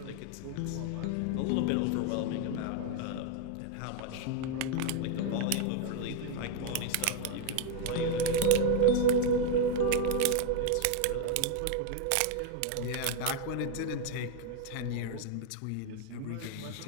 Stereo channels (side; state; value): both; different; correlation 0.01